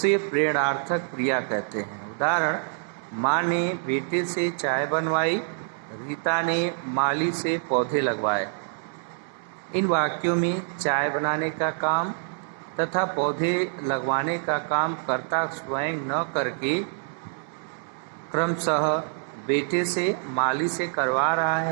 प्रेरणार्थक क्रिया कहते हैं। उदाहरण, माँ ने बेटे से चाय बनवाई, रीता ने माली से पौधे लगवाए। इन वाक्यों में चाय बनाने का काम तथा पौधे लगवाने का काम कर्ता स्वयं न करके क्रमशः बेटे से माली से करवा रहा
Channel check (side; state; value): left; silent; 61 dB below the other